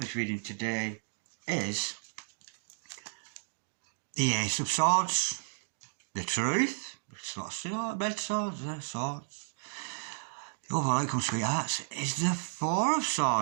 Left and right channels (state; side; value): silent; left; digital silence